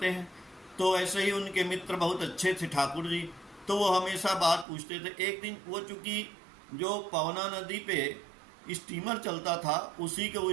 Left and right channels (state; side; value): drops out; left; at 4.7 s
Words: हैं। तो ऐसे ही उनके मित्र बहुत अच्छे थे ठाकुर जी, तो वो हमेशा बात पूछते थे। एक दिन वो, चूँकि जो पवना नदी पे स्टीमर चलता था, उसी के